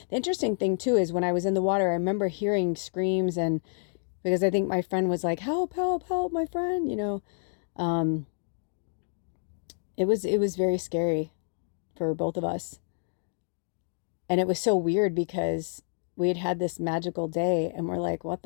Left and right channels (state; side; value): silent; right; digital silence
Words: interesting thing too, is when I was in the water, I remember hearing screams, and because I think my friend was like, help, my friend, you know. It was very scary for both of us. And it was so weird because we had had this magical day and we're like, what